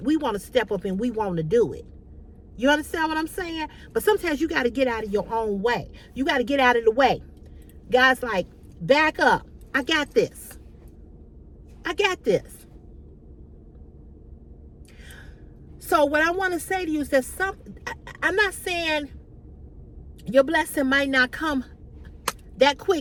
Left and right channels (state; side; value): identical; both; correlation 1.00